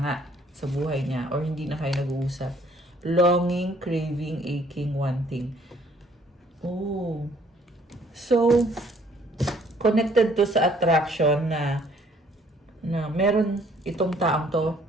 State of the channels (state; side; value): normal; both; correlation 0.61